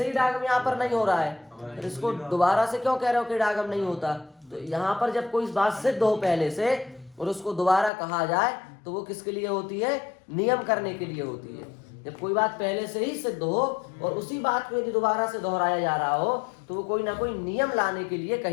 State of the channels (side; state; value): right; drops out; at 7.9 s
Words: ही इडागम यहाँ पर नहीं हो रहा है, तो इसको दोबारा से क्यों कह रहे हो कि इडागम नहीं होता? तो यहाँ पर जब कोई बात सिद्ध हो पहले से और उसको दोबारा कहा जाए तो वो किसके लिए होती है? नियम करने के लिए होती है। जब कोई बात पहले से ही सिद्ध हो और उसी बात को यदि दोबारा से दोहराया जा रहा हो तो वो कोई ना कोई नियम लाने के लिए